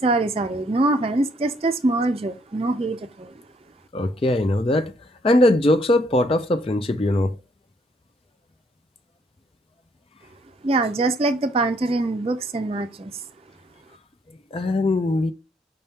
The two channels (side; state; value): both; normal; correlation 0.68